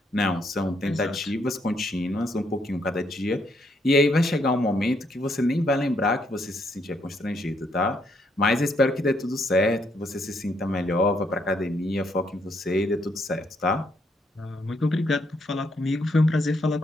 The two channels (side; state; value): both; normal; correlation 0.74